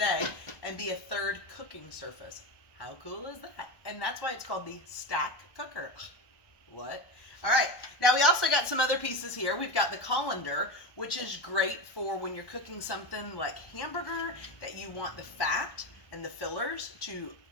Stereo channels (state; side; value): late; right; 1.2 ms